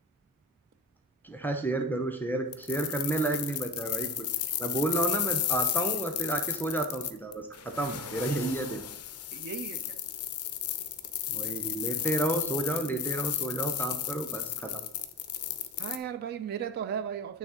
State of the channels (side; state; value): both; normal; correlation 0.33